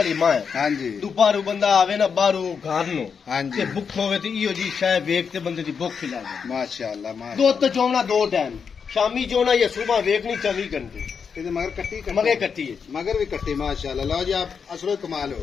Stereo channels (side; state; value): right; quieter; 6.3 dB